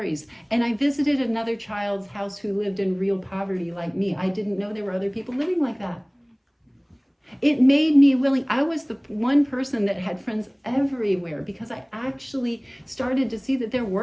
And I visited another child's house who lived in real poverty like me. I didn't know there were other people living like that. It made me willing. I was the one person that had friends everywhere because I actually started to see that there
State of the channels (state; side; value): identical; both; correlation 1.00